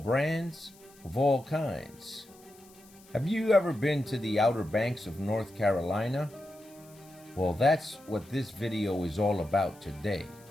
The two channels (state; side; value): noise; left; hiss, 25 dB below the sound